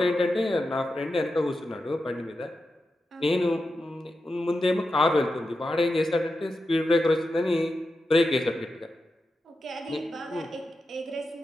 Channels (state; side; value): normal; both; correlation 0.89